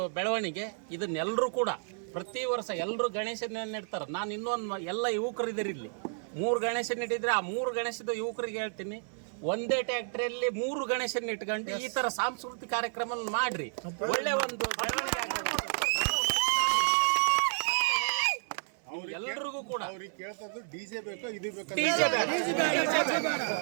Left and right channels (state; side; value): silent; left; 57 dB below the other